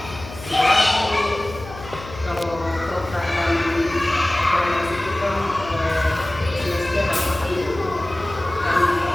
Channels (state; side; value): noise; left; hum, 14 dB below the sound